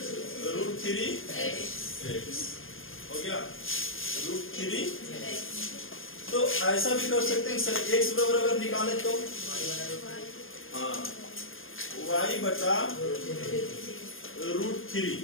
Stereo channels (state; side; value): late; right; 0.59 ms